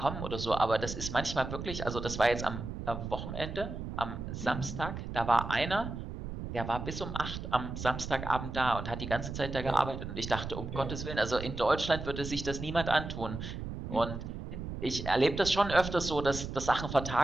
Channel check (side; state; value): right; noise; rumble, 7 dB below the sound